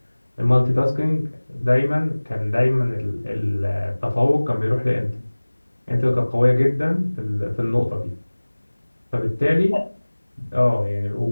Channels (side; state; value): both; inverted; correlation -1.00